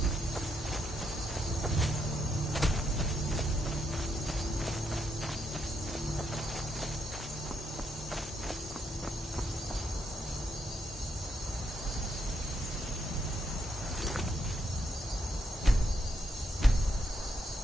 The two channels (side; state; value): both; normal; correlation 0.78